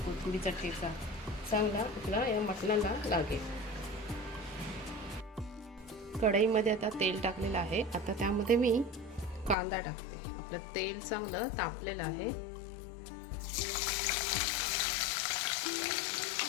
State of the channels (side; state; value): right; drops out; at 9.6 s